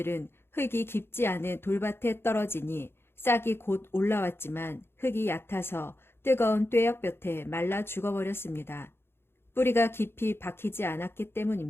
흙이 깊지 않은 돌밭에 떨어지니 싹이 곧 올라왔지만 흙이 얕아서 뜨거운 뙤약볕에 말라 죽어버렸습니다. 뿌리가 깊이 박히지 않았기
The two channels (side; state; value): right; late; 0.11 ms